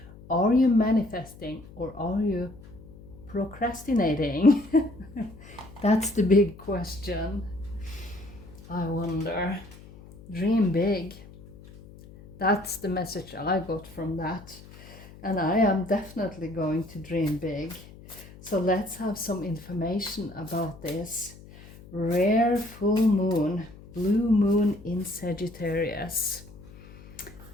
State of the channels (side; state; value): left; noise; hum, 19 dB below the sound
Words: Are you manifesting or are you procrastinating? That's the big question. I wonder. Dream big. That's the message I got from that. And I am definitely going to dream big. So let's have some information about this. Rare full moon, blue moon in Sagittarius.